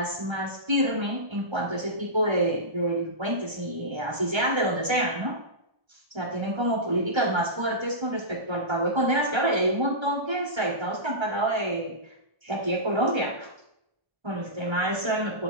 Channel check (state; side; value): late; left; 1.3 ms